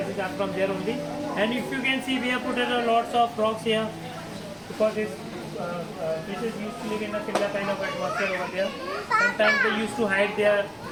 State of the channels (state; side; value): identical; both; correlation 1.00